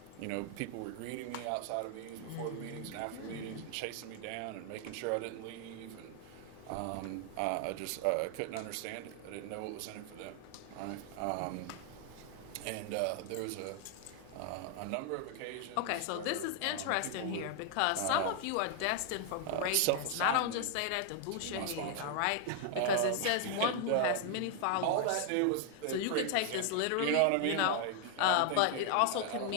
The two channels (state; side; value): different; both; correlation 0.00